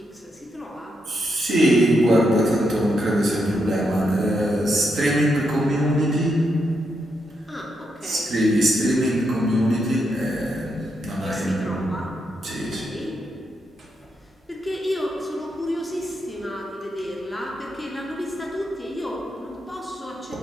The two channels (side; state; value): both; normal; correlation 0.81